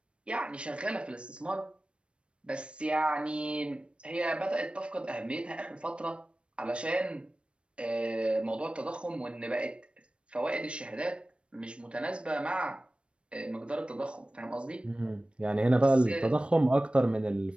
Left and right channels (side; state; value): left; late; 0.059 ms